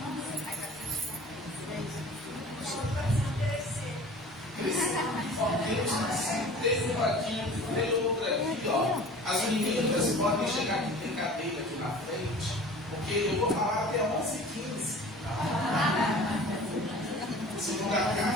Teve um aqui, teve outra aqui, ó. As meninas podem chegar aqui, tem cadeira aqui na frente, porque eu vou falar até 11h15. Segunda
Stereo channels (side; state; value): both; normal; correlation 0.43